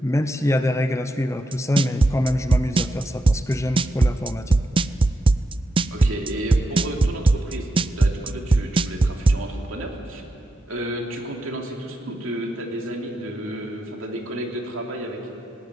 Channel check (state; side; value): normal; both; correlation 0.86